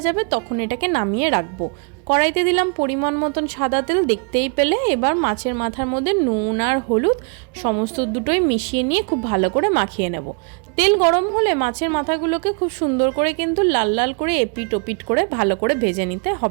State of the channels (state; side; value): quieter; left; 37.5 dB